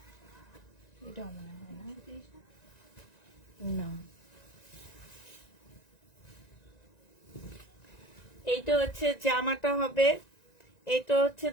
এটা মনে হয় না। না, এইটা হচ্ছে জামাটা হবে, এটা হচ্ছে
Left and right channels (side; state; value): right; late; 1.9 ms